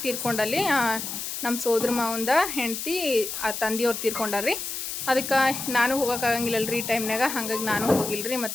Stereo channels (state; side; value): noise; left; hiss, 5 dB below the sound